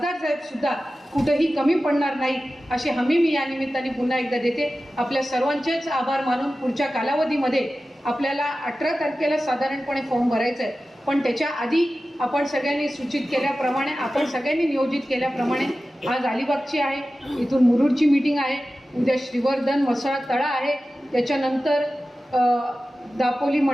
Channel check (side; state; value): both; normal; correlation 0.95